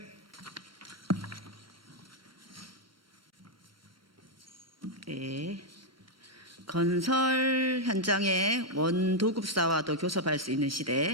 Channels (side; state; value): both; normal; correlation -0.01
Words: 네. 건설 현장에 원도급사와도 교섭할 수 있는